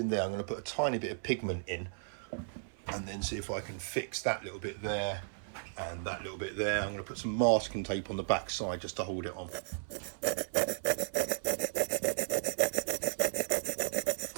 there. I'm going to put a tiny bit of pigment in and then see if I can fix that little bit there and that little bit there. I'm going to put some masking tape on the back side just to hold it on.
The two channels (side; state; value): left; silent; 54 dB below the other